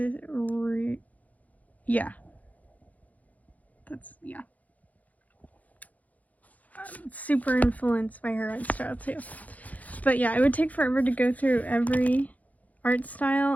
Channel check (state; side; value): late; right; 0.075 ms